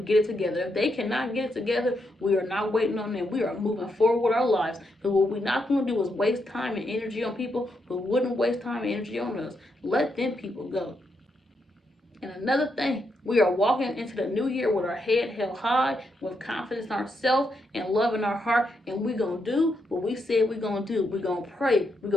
get it together. If they cannot get it together, we are not waiting on them. We are moving forward with our lives. Because what we're not going to do is waste time and energy on people who wouldn't waste time and energy on us. Let them people go. And another thing, we are walking into the new year with our head held high, with confidence in ourselves and love in our heart. And we're going to do what we said we're going to do. We're going to pray. We're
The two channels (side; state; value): both; normal; correlation 0.81